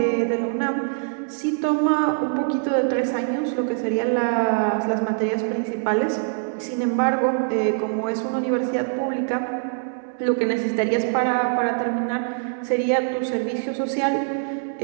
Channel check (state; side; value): silent; left; digital silence